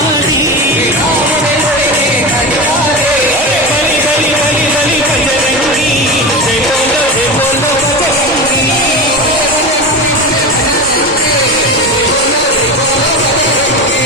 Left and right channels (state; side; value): normal; both; correlation 0.24